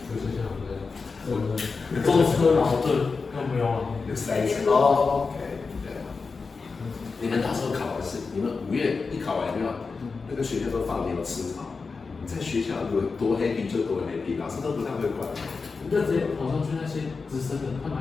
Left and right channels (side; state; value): right; quieter; 4.5 dB